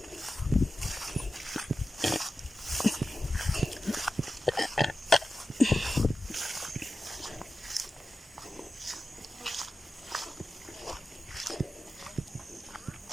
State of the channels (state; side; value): normal; both; correlation 0.93